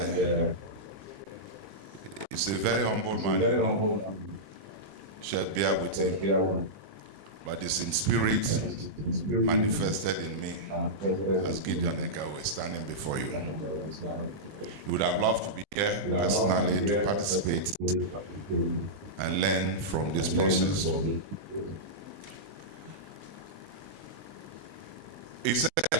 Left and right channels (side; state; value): left; late; 20 ms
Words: he's a very humble man. Should bear with him. but it's in spirit manifested in me as Gideon Egawe standing before you. You would have loved to be here personally to participate and learn from this process. He said, I